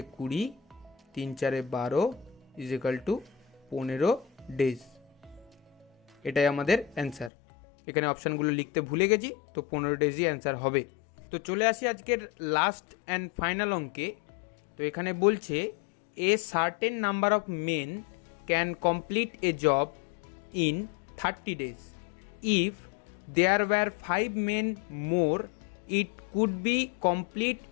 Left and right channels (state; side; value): drops out; right; at 7.3 s